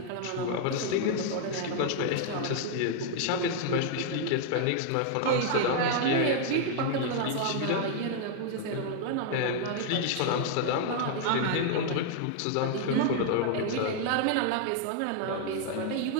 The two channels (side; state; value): both; different; correlation 0.00